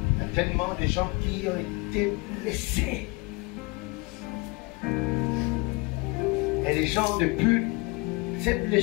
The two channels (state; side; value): quieter; right; 26.1 dB